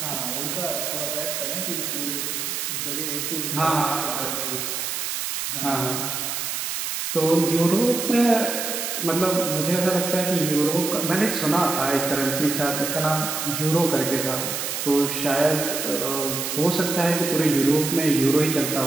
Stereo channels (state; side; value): noise; right; hiss, 3 dB below the sound